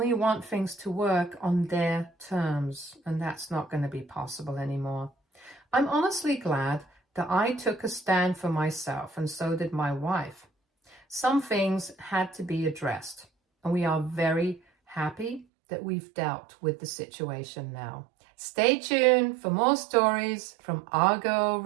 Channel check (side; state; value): left; drops out; at 15.5 s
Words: want things to work on their terms, and that's not going to be possible anymore. I'm honestly glad that I took a stand for myself, and so did my wife. Some things had to be addressed, and we are very happy that we've dealt with the situation now. Stay tuned for more stories from Argo